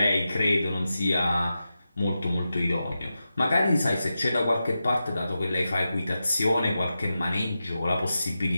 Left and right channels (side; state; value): both; inverted; correlation -0.91